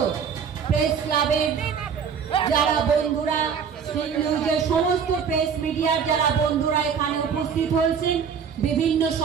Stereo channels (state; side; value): quieter; left; 6.8 dB